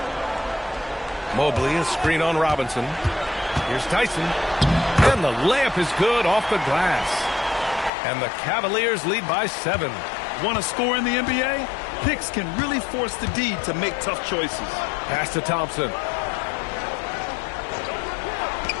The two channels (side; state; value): right; drops out; at 7.9 s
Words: Mobley, a screen on Robinson. Here's Tyson. And the layup is good off the glass. And the Cavaliers lead by 7. Want to score in the NBA? Picks can really force the D to make tough choices. Pass to Thompson.